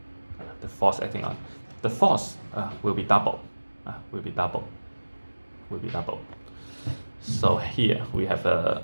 The force will be double. So here we have a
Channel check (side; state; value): both; inverted; correlation -1.00